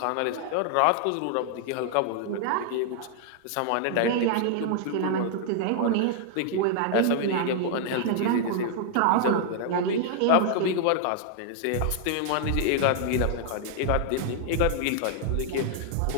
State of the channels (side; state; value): both; different; correlation 0.00